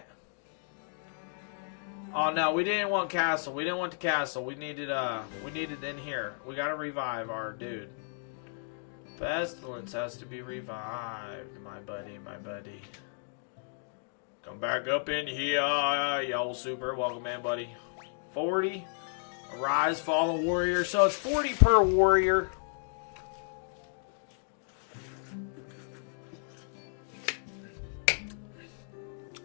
Oh no, we didn't want castle. We didn't want the castle. We needed in here. We gotta revive our dude. Pestilence has to be revived, my buddy, my buddy. Come back up in here, yo, super. Welcome in, buddy. 40. Arise, fallen warrior. So it's 40 per warrior.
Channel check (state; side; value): silent; right; digital silence